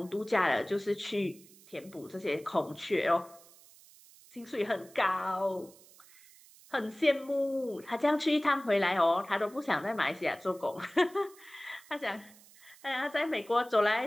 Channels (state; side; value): noise; right; hiss, 24 dB below the sound